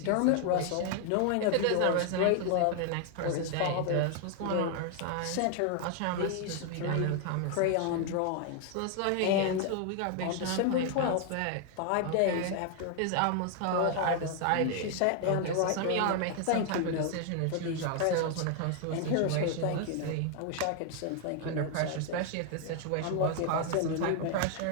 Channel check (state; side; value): different; both; correlation 0.00